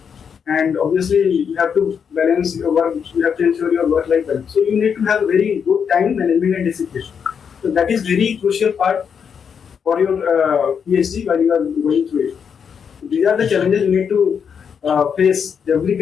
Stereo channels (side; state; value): right; quieter; 7.0 dB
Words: And obviously, you have to balance your work. You have to ensure your work-life balance. So you need to have very good time management and discipline. So that is very crucial part for your PhD while you are going through it. These are the challenges you need to face. Every